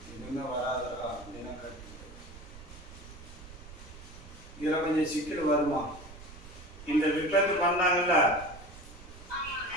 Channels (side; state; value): right; noise; rumble, 16 dB below the sound